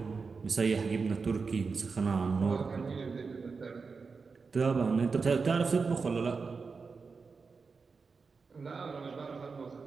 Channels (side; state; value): left; quieter; 4.8 dB